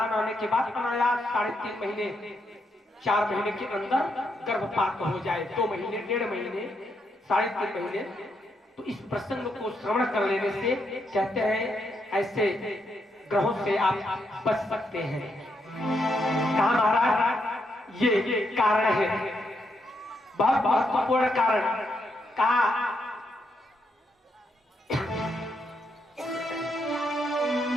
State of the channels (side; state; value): both; normal; correlation 0.79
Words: आने के बाद अनायास 3.5 महीने 4 महीने के अंदर गर्भपात हो जाए, 2 महीने 1.5 महीने 3.5 महीने, तो इस प्रसंग को श्रवण कर लेने से कहते हैं ऐसे ग्रहों से आप बच सकते हैं। कहा महाराज, ये कारण है, बहुत महत्वपूर्ण कारण। कहा